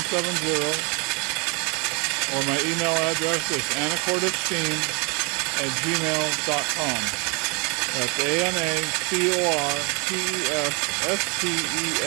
or my email address is anacortesteam@gmail.com. That's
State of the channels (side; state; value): left; quieter; 32.3 dB